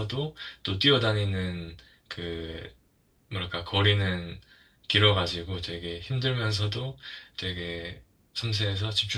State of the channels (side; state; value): both; identical; correlation 1.00